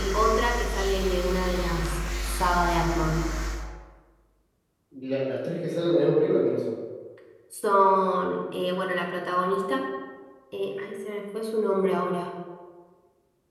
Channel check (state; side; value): identical; both; correlation 1.00